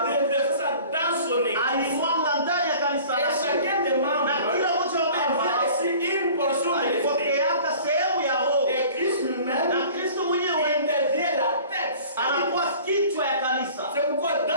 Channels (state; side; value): inverted; both; correlation -0.46